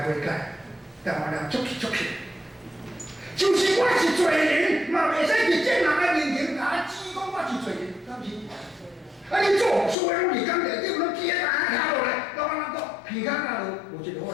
悔改。台湾人足气。就是我是罪人，嘛袂使伫正人的面前甲指讲我是罪人，敢是？你做所有物件内底，拢记在下落来，老板讲鼻孔那落无一个好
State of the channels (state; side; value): drops out; right; at 10.0 s